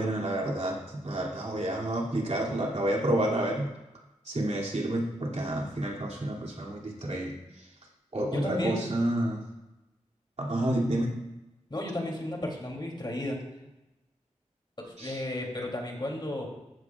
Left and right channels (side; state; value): both; normal; correlation 0.77